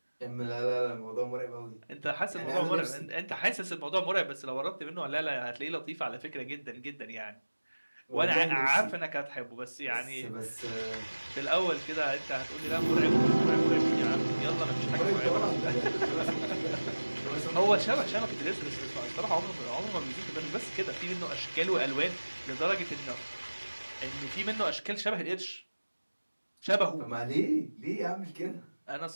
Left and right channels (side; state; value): both; inverted; correlation -1.00